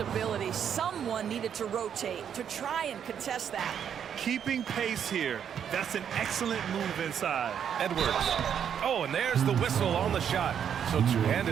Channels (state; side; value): quieter; left; 8.4 dB